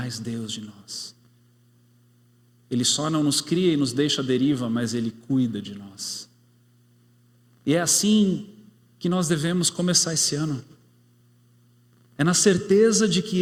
Deus de nós. Ele só não nos cria e nos deixa à deriva, mas Ele cuida de nós. E é assim que nós devemos começar esse ano. É na certeza de que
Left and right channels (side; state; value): both; identical; correlation 1.00